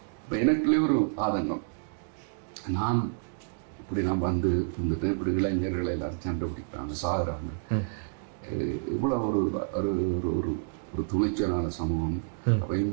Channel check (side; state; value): left; silent; digital silence